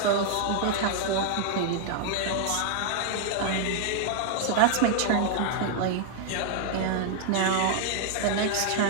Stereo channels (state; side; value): different; both; correlation 0.00